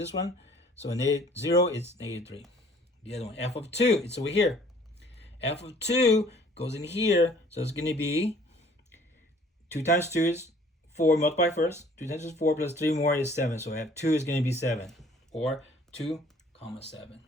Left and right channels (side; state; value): both; normal; correlation 0.55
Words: one. So at 0, it's -3. The other one, f of 2, it's over here. F of 2 goes in here. So it's going to be 2 times 2 is 4, multiply first. 2 times 2 is 4 plus 3 more is 7. So F2 is going to be 7. Or 2, 7.